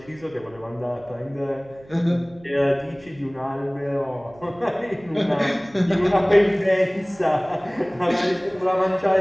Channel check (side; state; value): right; noise; hum, 24 dB below the sound